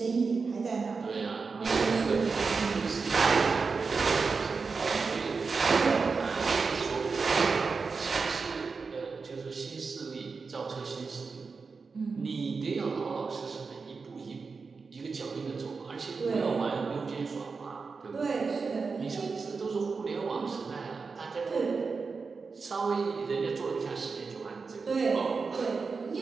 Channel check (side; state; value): left; quieter; 4.7 dB